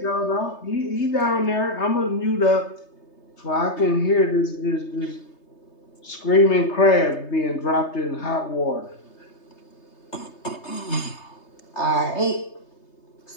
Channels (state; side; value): late; right; 3.3 ms